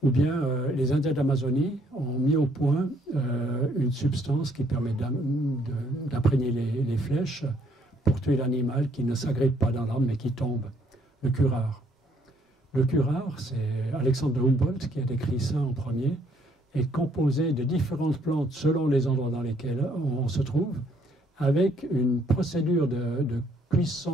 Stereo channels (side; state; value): both; normal; correlation 0.67